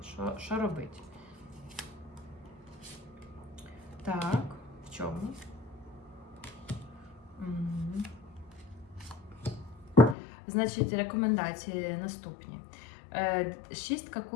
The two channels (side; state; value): right; drops out; at 10.2 s